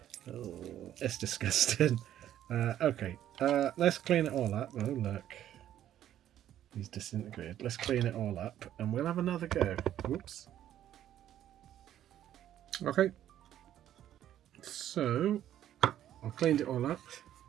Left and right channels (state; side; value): quieter; left; 11.5 dB